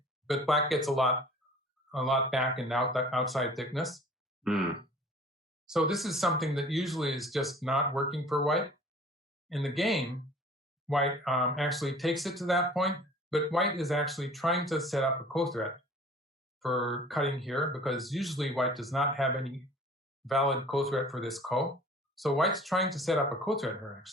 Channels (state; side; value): normal; both; correlation 0.48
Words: but black gets a lot back in the outside thickness. So this is something that usually is just not working for white. In the game, white actually takes it to that point, but white is actually trying to set up a co-threat for cutting here, because usually white does not have any valid co-threat for this ko. So white's trying to set up a co-threat here,